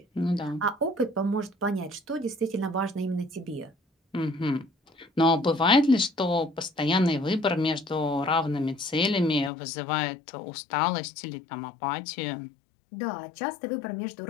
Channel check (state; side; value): drops out; right; at 9.5 s